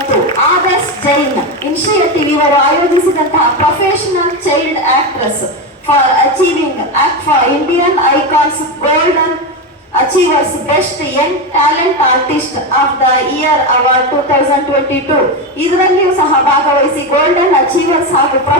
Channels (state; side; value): normal; both; correlation 0.14